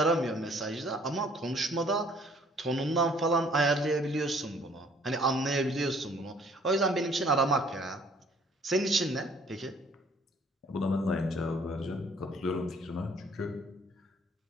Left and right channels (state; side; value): normal; both; correlation 0.59